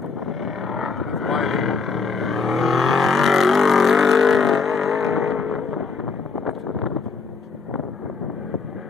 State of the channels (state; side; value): quieter; right; 4.8 dB